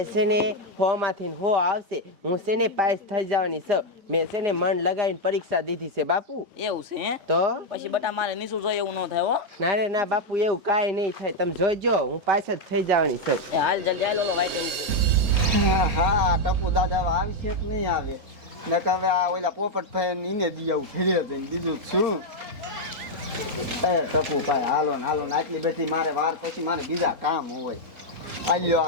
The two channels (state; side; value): late; left; 3.9 ms